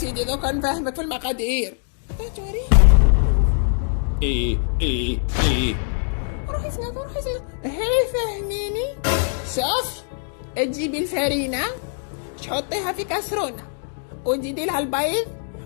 دوكا نفهمك في المقادير. توري. ايه روحي سناف. هي فهميني. شوف، تجيبي الفرينة تحطيها في كاسرونة، وتزيدي لها البيض،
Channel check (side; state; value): right; silent; digital silence